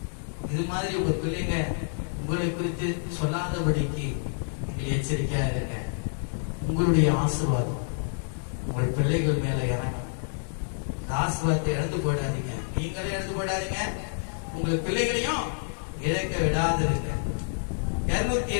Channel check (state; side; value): silent; right; digital silence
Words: இது மாதிரி உங்க பிள்ளைங்க உங்களை குறித்து சொல்லாதபடிக்கு நீங்கள் எச்சரிக்கையா இருங்க. உங்களுடைய ஆசீர்வாதம் உங்கள் பிள்ளைகள் மேல இறங்கணும். ஆசீர்வாதத்தை இழந்து போயிடாதீங்க, நீங்களே இழந்து போயிடாதீங்க, உங்கள் பிள்ளைகளையும் இழக்க விடாதிருங்க.